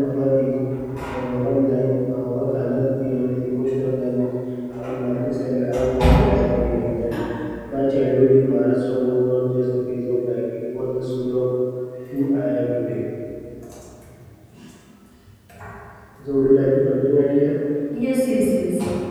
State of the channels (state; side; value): identical; both; correlation 1.00